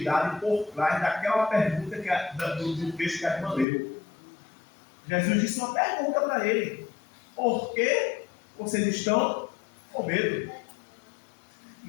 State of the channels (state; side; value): drops out; right; at 3.7 s